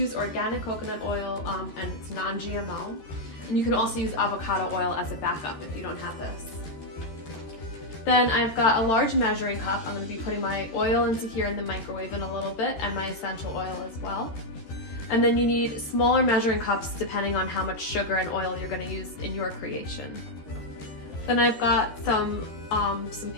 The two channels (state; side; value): late; right; 13 ms